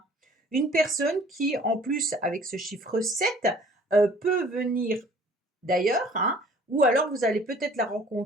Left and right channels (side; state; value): both; normal; correlation 0.53